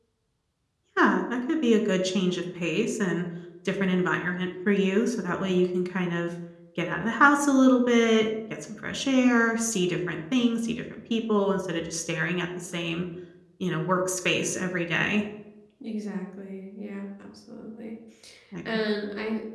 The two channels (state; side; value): identical; both; correlation 1.00